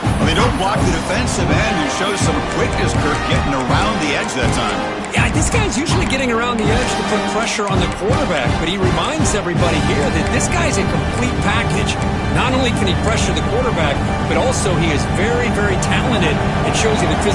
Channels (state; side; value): identical; both; correlation 1.00